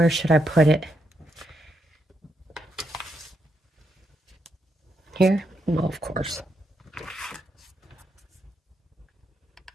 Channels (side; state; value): both; normal; correlation 0.81